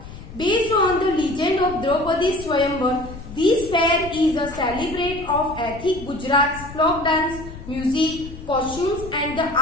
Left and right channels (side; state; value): left; noise; rumble, 14 dB below the sound